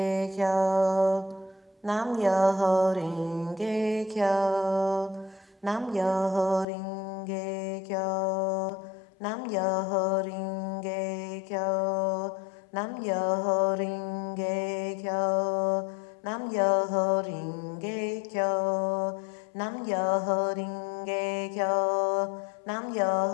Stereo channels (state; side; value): drops out; right; at 6.7 s